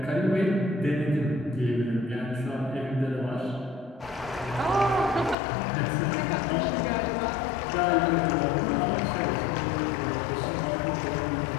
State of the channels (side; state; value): right; drops out; at 5.4 s